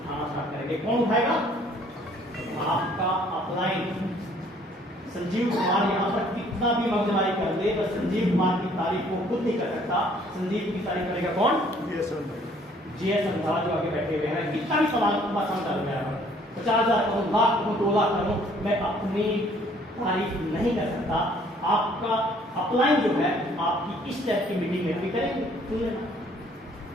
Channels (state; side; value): normal; both; correlation 0.60